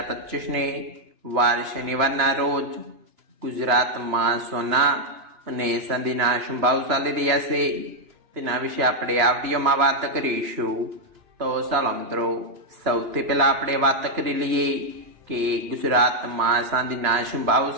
વાર શનિવારના રોજ ગુજરાતમાં સોના અને ચાંદીના શું ભાવ ચાલી રહ્યા છે તેના વિશે આપણે આ વિડીયોમાં વાત કરીશું। તો ચાલો મિત્રો, સૌથી પહેલા આપણે વાત કરી લઈએ કે ગુજરાતમાં ચાંદીના શું ભાવ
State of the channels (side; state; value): left; late; 3.0 ms